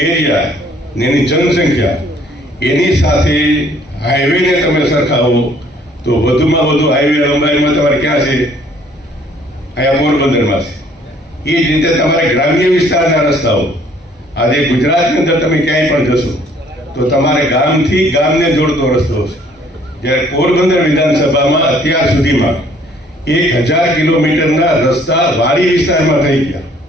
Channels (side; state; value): both; normal; correlation 0.60